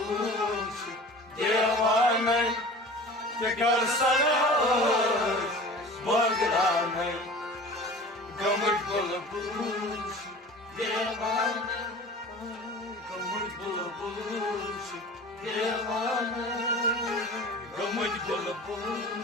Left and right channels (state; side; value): normal; both; correlation 0.40